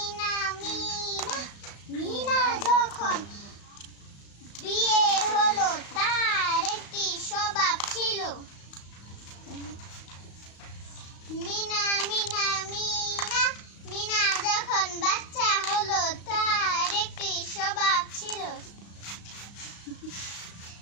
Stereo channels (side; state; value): right; late; 35 ms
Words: মিনা মিনা যখন বিয়ে হলো তার একটি স্বভাব ছিল। মিনা মিনা মিনা মিনা যখন বাচ্চা হলো তার একটি স্বভাব ছিল।